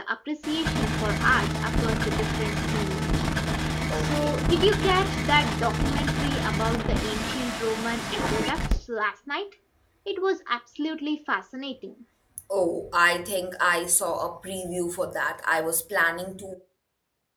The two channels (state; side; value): identical; both; correlation 1.00